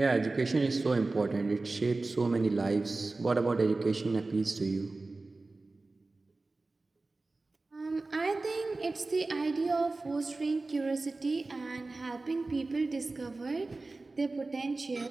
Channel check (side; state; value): left; quieter; 3.4 dB